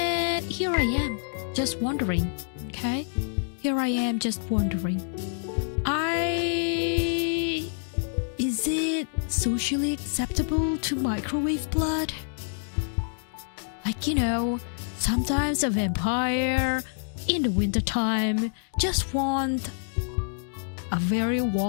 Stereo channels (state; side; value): silent; right; digital silence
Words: here I am, just wondering, okay? Is it socially acceptable to microwave blood? Sometimes a vampire in the wintertime just want a very